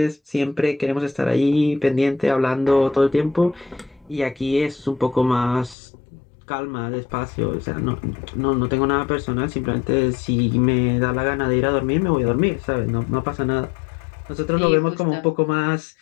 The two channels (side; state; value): right; drops out; at 5.8 s